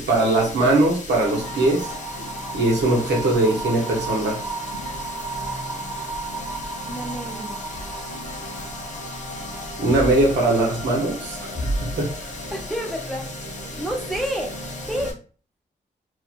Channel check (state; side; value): normal; both; correlation 0.47